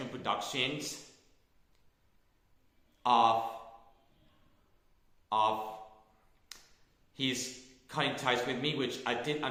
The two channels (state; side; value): identical; both; correlation 1.00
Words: Productions of he's cutting ties with me, which I did